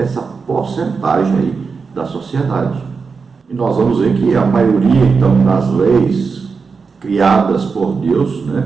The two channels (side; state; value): left; quieter; 5.0 dB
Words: porcentagem aí da sociedade. E nós vamos ver que a maioria, então, das leis criadas por Deus,